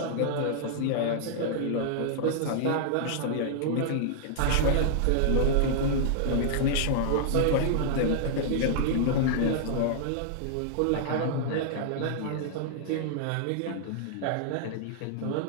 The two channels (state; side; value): different; both; correlation -0.01